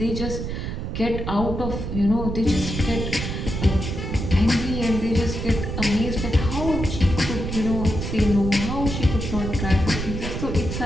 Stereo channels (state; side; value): noise; right; rumble, 4 dB below the sound